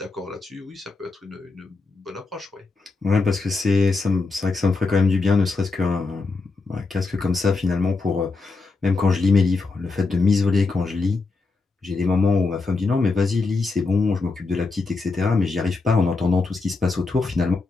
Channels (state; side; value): quieter; right; 3.9 dB